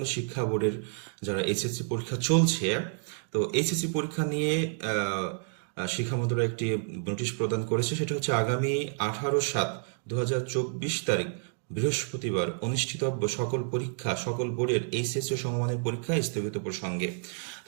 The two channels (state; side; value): silent; left; 58 dB below the other